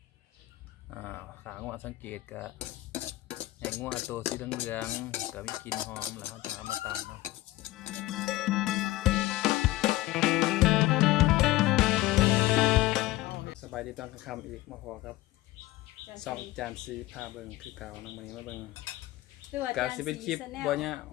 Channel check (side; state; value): right; quieter; 17.7 dB